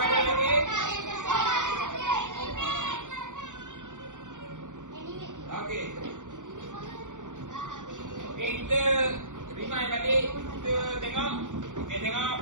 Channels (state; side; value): late; left; 0.86 ms